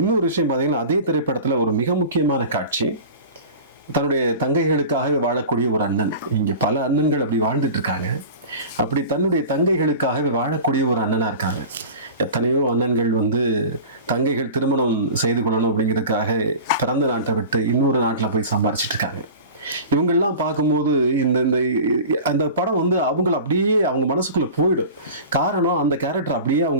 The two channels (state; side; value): inverted; both; correlation -0.36